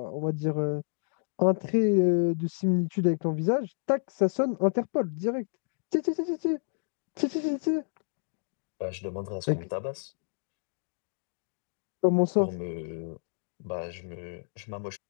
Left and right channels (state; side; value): silent; right; digital silence